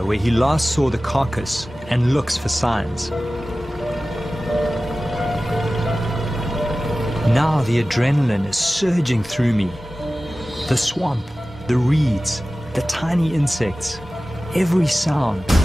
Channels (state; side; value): normal; both; correlation 0.96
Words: where he last saw the carcass and looks for signs. Now the adrenaline is surging through me. The swamp, the reeds, the tiny insects, every sound,